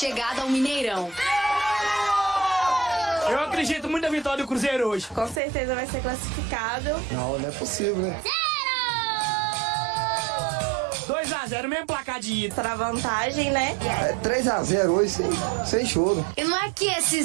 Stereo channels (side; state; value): left; drops out; at 5.4 s